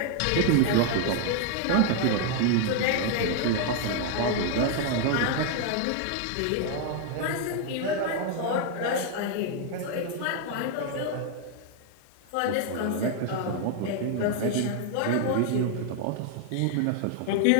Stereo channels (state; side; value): different; both; correlation 0.00